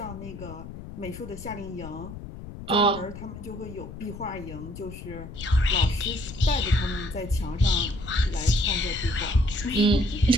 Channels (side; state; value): left; noise; rumble, 12 dB below the sound